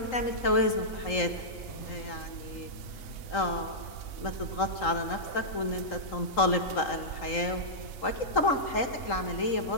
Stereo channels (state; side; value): late; right; 3.8 ms